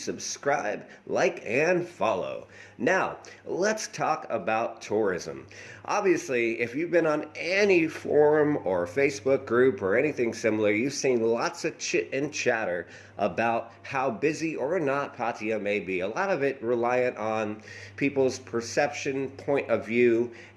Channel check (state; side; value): identical; both; correlation 1.00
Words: like, and follow. Now, let's talk about tourism. Obviously, if you've been on any forum or Facebook group or anything similar, you've seen lots of chit and chatter about how busy or not Pattaya may be. A lot of it reliant on people's perception, point of view,